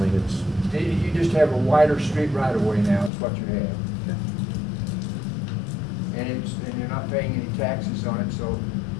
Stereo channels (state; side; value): drops out; right; at 3.1 s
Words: it's, You just have a wider street right-of-way now, is what you have. And you're not paying any taxes on it, so